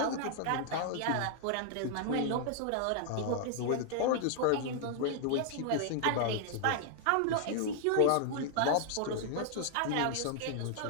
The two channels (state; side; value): different; both; correlation 0.00